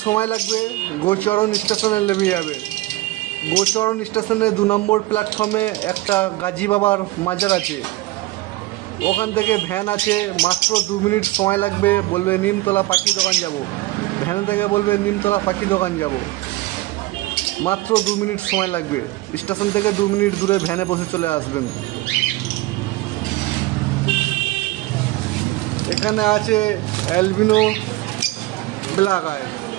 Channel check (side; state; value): left; quieter; 18.9 dB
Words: সময় লাগবে, গোচরণ স্টেশনে নেমে যাবে। গোচরণ স্টেশনে 2 নম্বর প্ল্যাটফর্মে একটা গাজী বাবার মাজার আছে, ওখান থেকে ভ্যান আছে। মাত্র 2 মিনিট সময় লাগবে। বলবে নিমতলা পাখি দোকান যাব, ভ্যান থেকে বলবে নিমতলা পাখি দোকান যাব। মাত্র 2 মিনিট সময় লাগবে। স্টেশন থেকে 2 মিনিট দূরে ভ্যানে বসে চলে আসবেন। এখানে আছে অ্যালবিনো ব্ল্যাক আই,